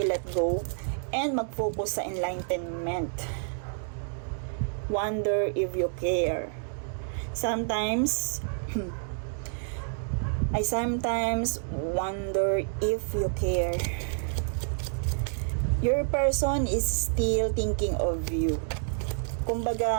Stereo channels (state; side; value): silent; left; digital silence